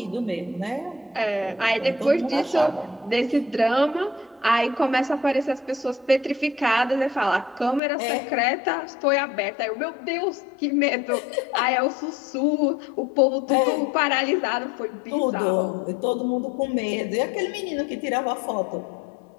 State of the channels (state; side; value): drops out; right; at 7.8 s